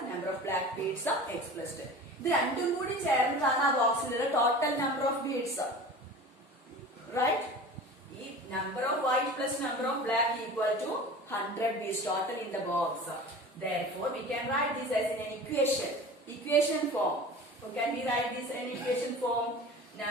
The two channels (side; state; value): both; normal; correlation 0.37